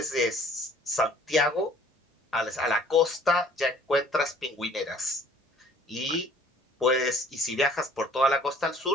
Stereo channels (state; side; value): normal; both; correlation 0.55